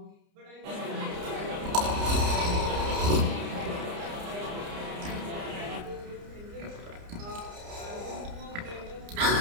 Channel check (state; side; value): late; left; 30 ms